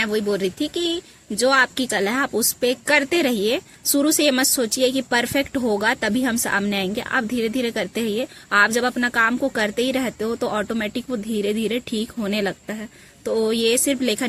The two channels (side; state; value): both; identical; correlation 1.00